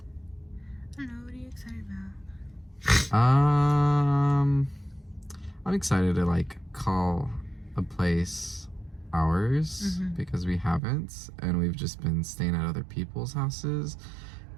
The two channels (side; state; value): left; drops out; at 10.8 s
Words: I don't know, what are you excited about? I'm excited to like call a place ours because we haven't, and we've just been staying at other people's houses